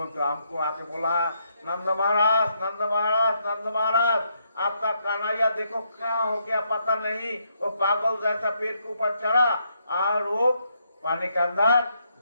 ने तो हमको आके बोला, नंद महाराज, नंद महाराज, नंद महाराज, आपका कन्हैया देखो क्या हो गया पता नहीं, वो पागल जैसा पेड़ के ऊपर चढ़ा और वो पानी के अंदर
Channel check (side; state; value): both; inverted; correlation -0.76